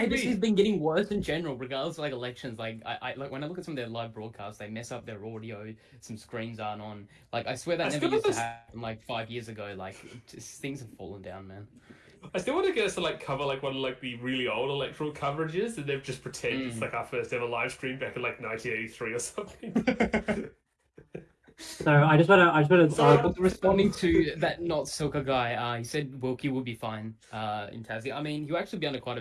ABC's me. been getting worse in general, regardless of like elections. Like, I like when I look at some of their live broadcasts, they mess up their audio. Some screens aren't on. Like, I swear that I never still used to was- happen like 5 years ago. Like, things have fallen down, man. I still want to get us to like cover like one of like the really old electoral coverages, and they've just pretend it's like our first ever live stream back in like 1983 or something. So I just want to. So- Responding to that not Silka guy, he said Wilkie will be fine in Tassie. I mean, he'll actually be under quite a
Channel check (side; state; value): both; identical; correlation 1.00